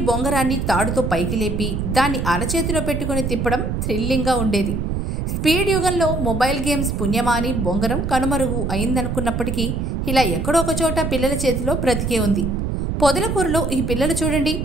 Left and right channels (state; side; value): noise; right; rumble, 2 dB below the sound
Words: బొంగరాన్ని తాడుతో పైకి లేపి దాన్ని అరచేతిలో పెట్టుకుని తిప్పడం థ్రిల్లింగ్గా ఉండేది. స్పీడ్ యుగంలో మొబైల్ గేమ్స్ పుణ్యమా అని బొంగరం కనుమరుగు అయిందనుకున్నప్పటికీ ఇలా ఎక్కడో ఒక చోట పిల్లల చేతిలో బ్రతికే ఉంది. పొదలకూరులో ఈ పిల్లలు చూడండి